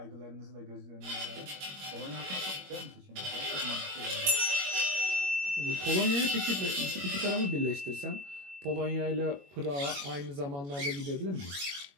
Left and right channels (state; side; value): late; left; 21 ms